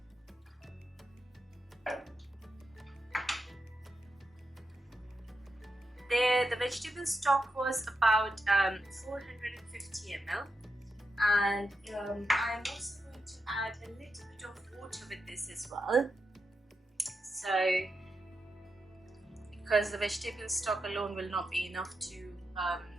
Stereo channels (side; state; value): both; normal; correlation 0.86